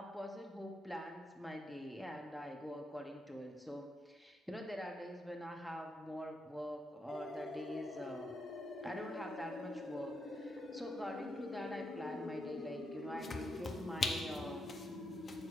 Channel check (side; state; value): both; normal; correlation 0.82